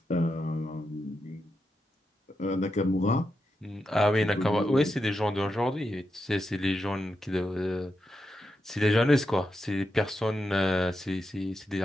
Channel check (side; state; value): both; normal; correlation 0.86